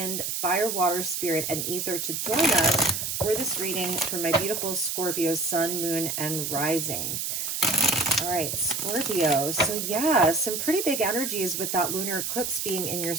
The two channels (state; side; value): noise; right; hiss, 2 dB below the sound